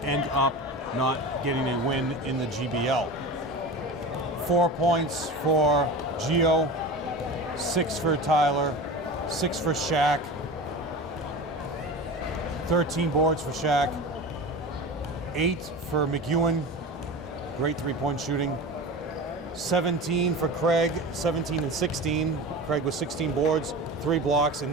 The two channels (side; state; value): both; normal; correlation 0.30